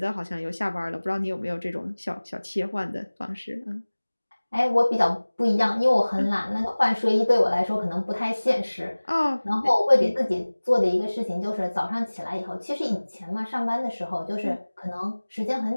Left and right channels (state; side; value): inverted; both; correlation -1.00